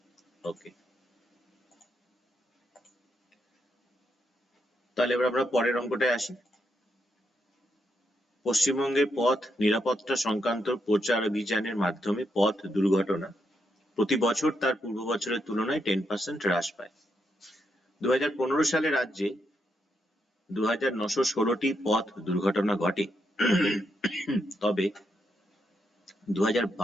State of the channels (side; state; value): both; normal; correlation 0.80